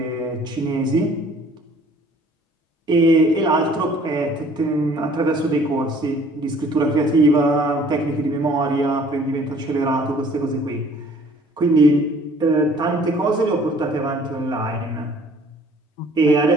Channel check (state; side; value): normal; both; correlation 0.55